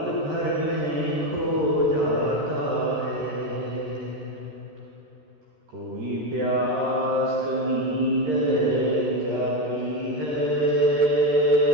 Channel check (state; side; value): late; left; 13 ms